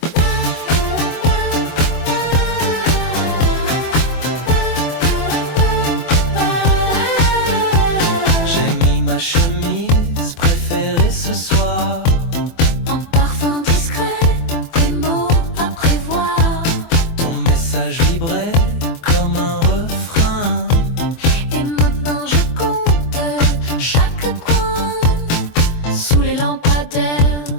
J'ai mis ma chemise préférée ce soir. En parfum discret, des mots à prévoir. Ton message vibrait comme un refrain. Et maintenant je compte chaque coin. Sous les lampadaires,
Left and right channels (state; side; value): late; right; 24 ms